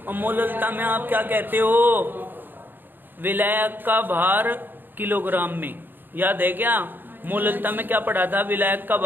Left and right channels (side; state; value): left; late; 0.094 ms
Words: और मोललता में आप क्या कहते हो? विलायक का भार किलोग्राम में। याद है क्या? मोललता में क्या पढ़ा था? विलायक का